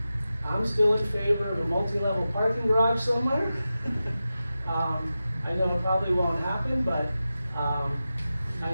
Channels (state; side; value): inverted; both; correlation -0.93